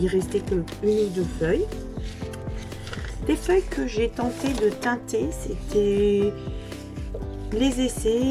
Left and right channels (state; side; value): identical; both; correlation 1.00